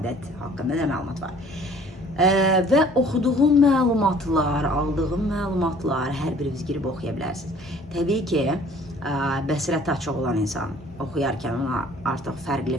haqqında nə məlumat var? Və oxuduğum məlumatlar, aldığım məlumatlar hər biriniz girib oxuya bilərsiniz. Təbii ki, bəsirəti açıq olan insan oxuyarkən ona artıq fərqli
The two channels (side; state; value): both; normal; correlation 0.53